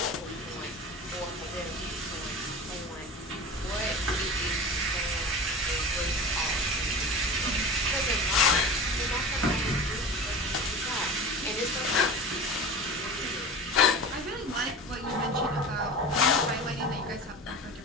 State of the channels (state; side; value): normal; both; correlation 0.33